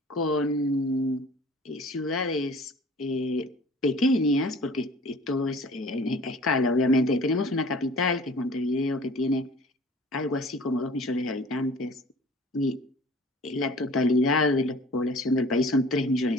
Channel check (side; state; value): both; normal; correlation 0.48